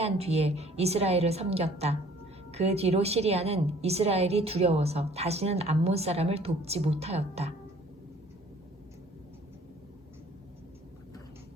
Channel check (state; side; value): normal; both; correlation 0.54